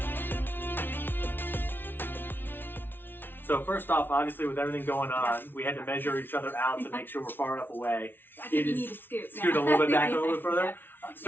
So first off, obviously with everything going on, we had to measure each other out to make sure we're far enough away. I think you need to scoot. Scoot a little bit back, a little bit further. Yeah.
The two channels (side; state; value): right; late; 0.10 ms